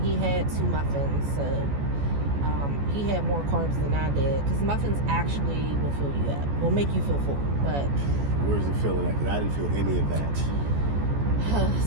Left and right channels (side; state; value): left; late; 14 ms